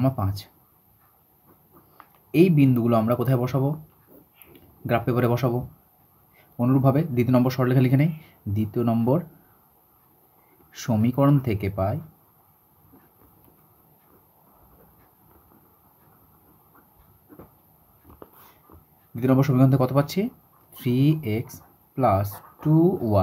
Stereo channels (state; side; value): identical; both; correlation 1.00